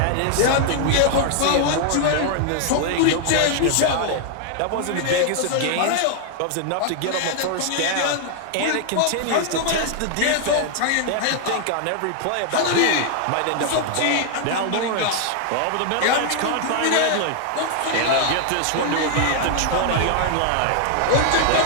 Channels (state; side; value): different; both; correlation 0.00